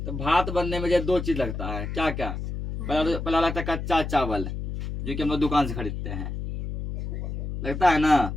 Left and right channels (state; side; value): noise; left; hum, 5 dB below the sound